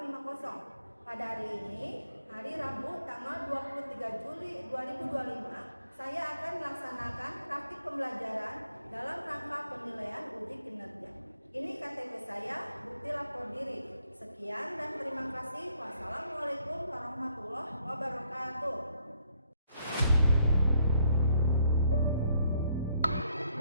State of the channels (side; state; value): both; inverted; correlation -0.70